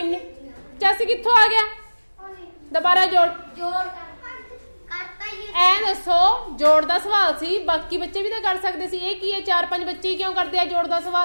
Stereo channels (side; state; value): both; inverted; correlation -1.00